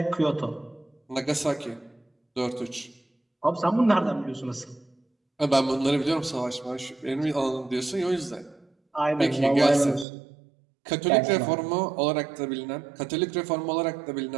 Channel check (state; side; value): drops out; left; at 10.1 s